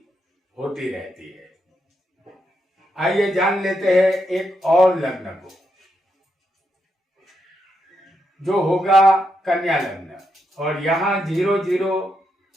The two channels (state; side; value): normal; both; correlation 0.82